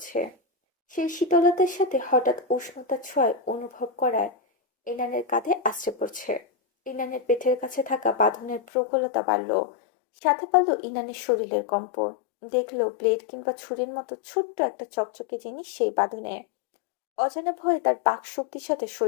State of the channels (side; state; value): right; drops out; at 8.6 s